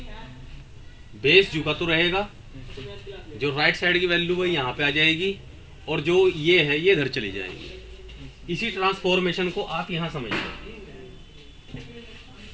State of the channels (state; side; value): identical; both; correlation 1.00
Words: बेस झुका तो रहेगा, जो राइट साइड की वैल्यू है यहाँ पे आ जाएगी, और जो ये है ये इधर चली जाएगी। इसी ट्रांसफॉर्मेशन को आप यहाँ समझिए।